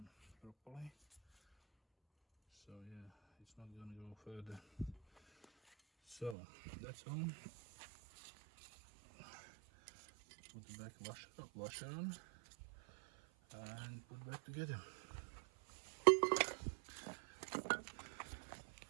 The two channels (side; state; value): left; drops out; at 6.4 s